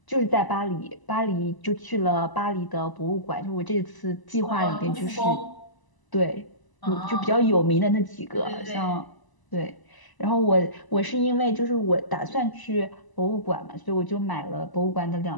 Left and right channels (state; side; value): late; right; 1.0 ms